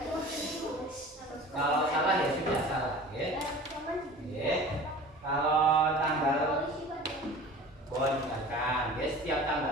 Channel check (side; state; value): both; normal; correlation 0.41